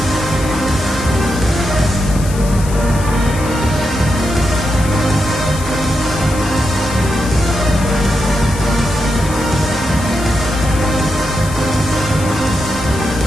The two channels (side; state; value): left; noise; hiss, 13 dB below the sound